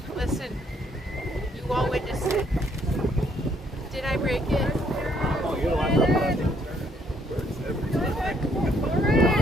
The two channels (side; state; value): both; normal; correlation 0.68